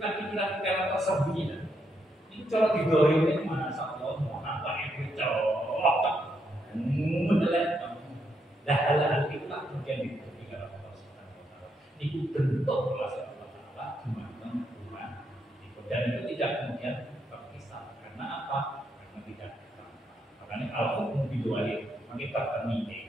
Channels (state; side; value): normal; both; correlation 0.78